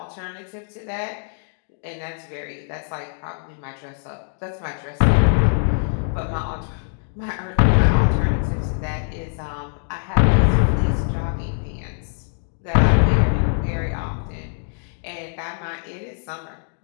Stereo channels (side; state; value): right; silent; digital silence